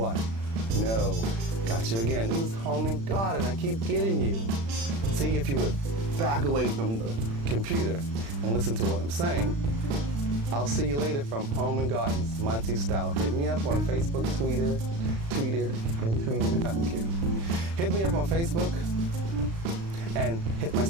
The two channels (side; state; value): left; late; 36 ms